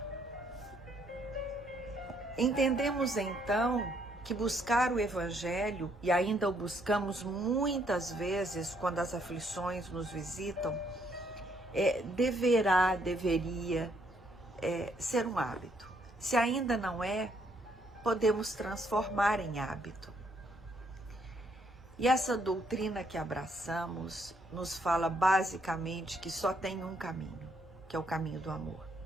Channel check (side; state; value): both; normal; correlation 0.71